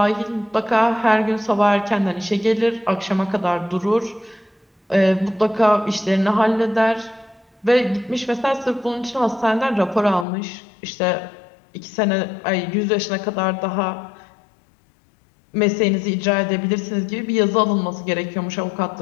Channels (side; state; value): right; drops out; at 10.2 s